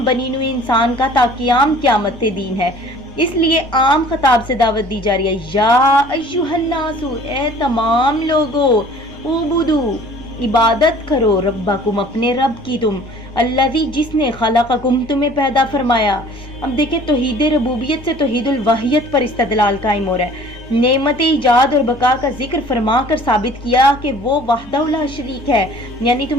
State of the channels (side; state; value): right; noise; rumble, 25 dB below the sound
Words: بنی نوع انسان کا تا قیام قیامت دین ہے۔ اس لیے عام خطاب سے دعوت دی جا رہی ہے، یا ایھا الناس، اے تمام لوگو، اعبدو، عبادت کرو، ربکم، اپنے رب کی، تم الذی، جس نے خلقکم، تمہیں پیدا فرمایا۔ اب دیکھیں توحید ربوبیت سے توحید الوحیت پر استدلال قائم ہو رہا ہے، نعمت ایجاد اور بقا کا ذکر فرما کر ثابت کیا کہ وہ وحدہ لا شریک ہے، یعنی